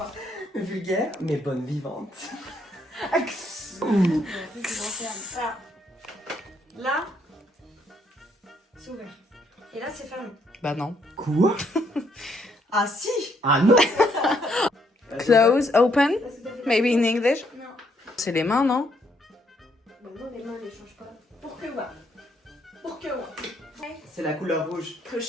vulgaire, mais bonne vivante. Là, c'est ouvert. Et là, c'est fermé. Bah non. Quoi? Ah si. Ah non. Close, open, maybe in English. Non. C'est les mains, non? Bah non, les mains ne changent pas. Pour que ouais. Pour que ouais. C'est la couleur rouge. Que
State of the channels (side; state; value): both; normal; correlation 0.72